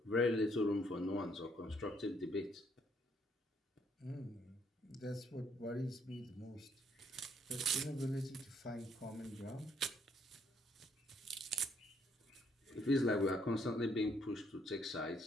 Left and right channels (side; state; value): both; normal; correlation 0.69